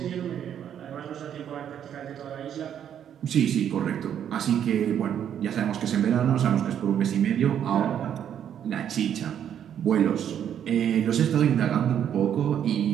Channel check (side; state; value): left; quieter; 9.4 dB